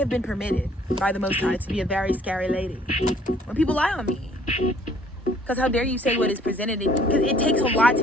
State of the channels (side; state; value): both; normal; correlation 0.59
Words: been permitted by the Most High to be a very scary lady. When people lie on me, because how dare you say what is presented? Because it takes a lot